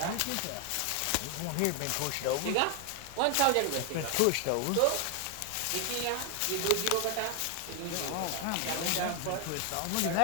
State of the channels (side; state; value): both; different; correlation 0.01